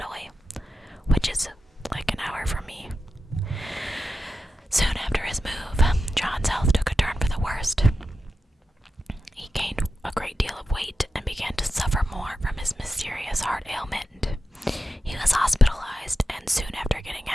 which is like an hour from me. Soon after his move, John's health took a turn for the worst. He gained a great deal of weight and began to suffer more from his mysterious heart ailment. He was hospitalized, and soon after getting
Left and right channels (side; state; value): both; normal; correlation 0.91